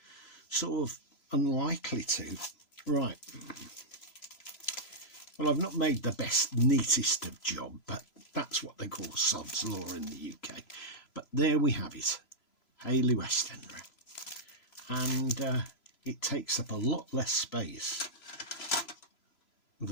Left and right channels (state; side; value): late; right; 3.0 ms